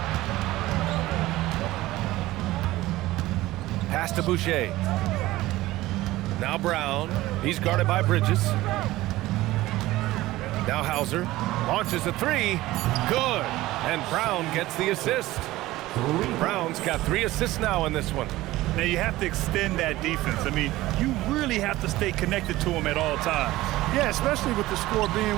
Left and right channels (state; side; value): quieter; left; 17.3 dB